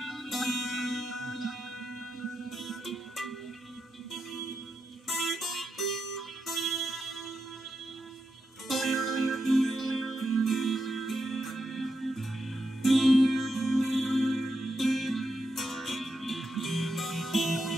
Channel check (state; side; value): normal; both; correlation 0.85